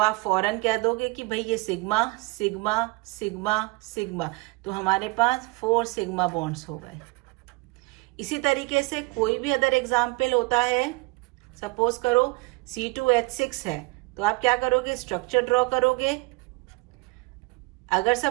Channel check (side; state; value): left; quieter; 25.3 dB